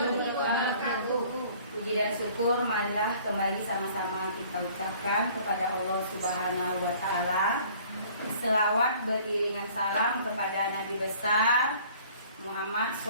wabarakatuh. Puji dan syukur marilah kembali sama-sama kita ucapkan kepada Allah Subhanahu wa taala. Selawat beriringan salam kepada Nabi besar Muhammad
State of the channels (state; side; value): inverted; both; correlation -0.53